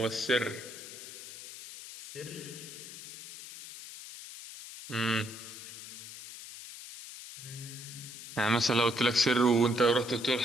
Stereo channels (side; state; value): left; noise; hiss, 12 dB below the sound